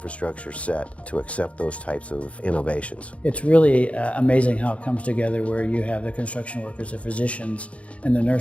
set to accept those types of innovations. It's really amazing how it comes together, where you have the construction workers, the physicians, and the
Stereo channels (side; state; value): right; late; 0.063 ms